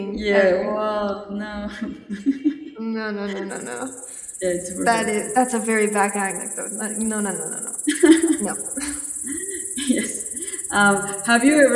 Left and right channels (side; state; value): both; identical; correlation 1.00